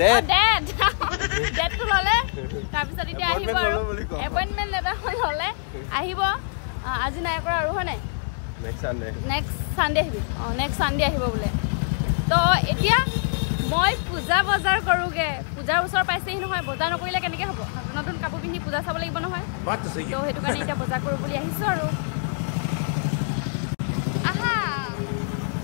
ডেটটো ললে তাৰপিছত এতিয়া আহিব আৰু এপইণ্টমেণ্ট লেটাৰ ল'লে আহিব আজি নাই কৰা আৰু হয় নাই নেক্সট চানডে আহিবি নেক্সট চানডে আহিব বোলে তো এতিয়া মই পূজা বজাৰ কৰোগে পূজাৰ ওচৰ পাইছেহি নহয় বজাৰ নকৰিলে কেনেকে হ'ব নতুন নতুন কাপোৰ পিন্ধি পূজা চাব লাগিব নহয় তো সেইটো কাৰণে এতিয়া বজাৰ কৰোঁ বুলি আহিছো আৰু আহা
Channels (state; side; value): silent; right; digital silence